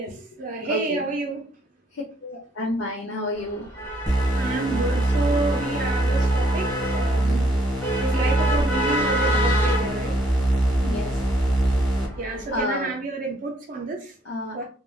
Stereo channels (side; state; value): both; normal; correlation 0.67